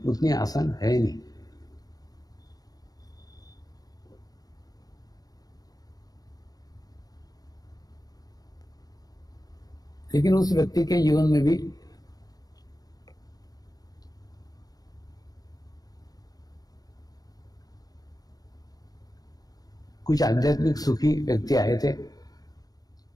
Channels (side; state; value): right; late; 0.18 ms